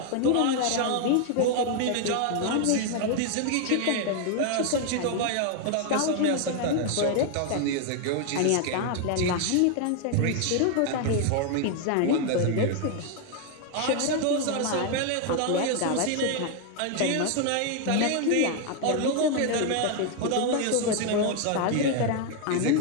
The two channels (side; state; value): both; different; correlation 0.01